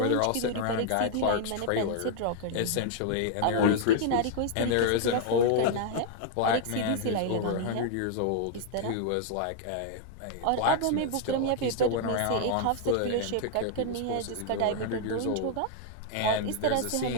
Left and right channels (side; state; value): both; different; correlation 0.00